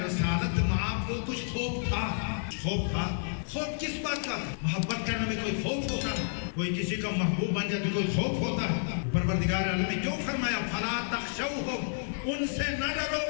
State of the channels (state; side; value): silent; right; digital silence